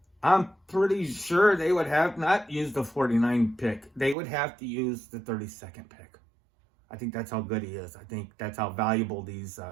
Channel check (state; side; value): drops out; left; at 4.2 s